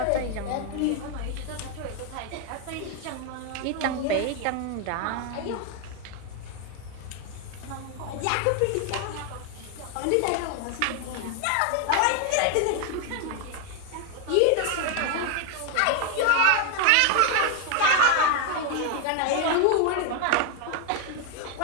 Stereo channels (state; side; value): different; both; correlation 0.01